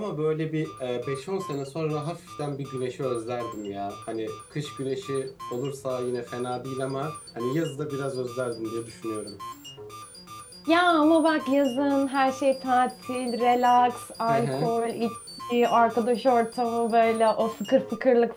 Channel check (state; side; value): identical; both; correlation 1.00